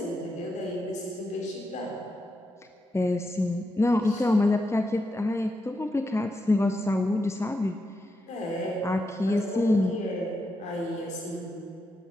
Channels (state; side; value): normal; both; correlation 0.85